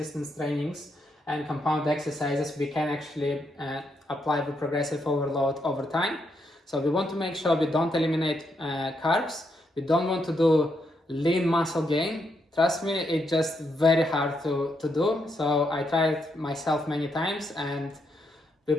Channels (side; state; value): both; normal; correlation 0.79